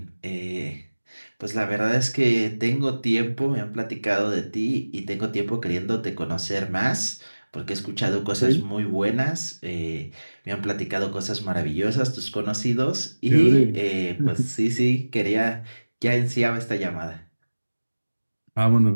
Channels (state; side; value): inverted; both; correlation -1.00